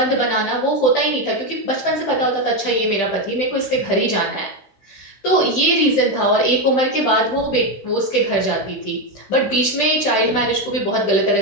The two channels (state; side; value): late; right; 15 ms